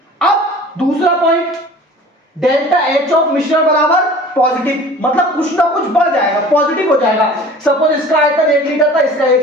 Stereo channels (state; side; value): normal; both; correlation 0.43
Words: अब दूसरा पॉइंट, डेल्टा H ऑफ मिश्रण बराबर पॉजिटिव, मतलब कुछ ना कुछ बढ़ जाएगा, पॉजिटिव हो जाएगा। सपोज इसका आयतन 1 लीटर था, इसका